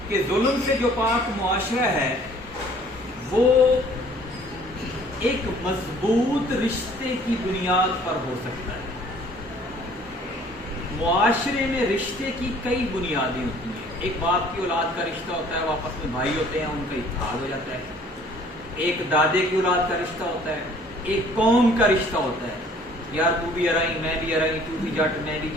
کہ ظلم سے جو پاک معاشرہ ہے وہ ایک مضبوط رشتے کی بنیاد پر ہو سکتا ہے۔ معاشرے میں رشتے کی کئی بنیادیں ہوتی ہیں۔ ایک باپ کی اولاد کا رشتہ ہوتا ہے، وہ آپس میں بھائی ہوتے ہیں، ان کا اتحاد ہو جاتا ہے۔ ایک دادے کی اولاد کا رشتہ ہوتا ہے، ایک قوم کا رشتہ ہوتا ہے، یار تو بھی ارائی میں بھی ارائی، تو بھی جٹ میں بھی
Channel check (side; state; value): both; normal; correlation 0.55